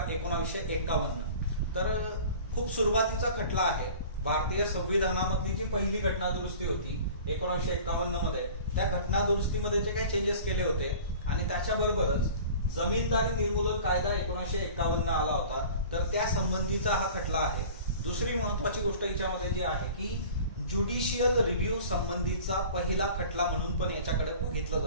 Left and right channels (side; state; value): both; inverted; correlation -0.43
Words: 1951। तर खूप सुरुवातीचा खटला आहे। भारतीय संविधानामधली जी पहिली घटना दुरुस्ती होती 1951 मध्ये, त्या घटना दुरुस्तीमध्ये जे काही चेंजेस केले होते आणि त्याच्याबरोबरच जमीनदारी निर्मूलन कायदा 1951 आला होता, तर त्या संबंधीचा हा खटला आहे। दुसरी महत्वाची गोष्ट याच्यामध्ये जी आहे की ज्युडिशियल रिव्ह्यू संबंधीचा पहिला खटला म्हणून पण याच्याकडे बघितलं